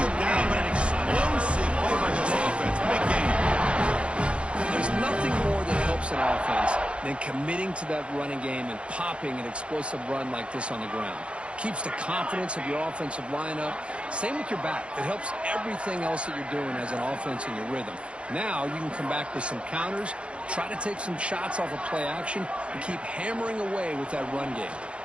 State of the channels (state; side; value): late; left; 0.059 ms